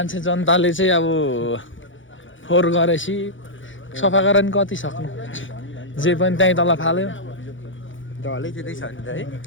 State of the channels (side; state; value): right; late; 0.56 ms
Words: जनताले चाहिँ अब फोहोर गरेपछि सफा गरेर नि कति सक्नु जे पनि त्यहीँ तल फाल्यो ढलै त्यतै छ नि त है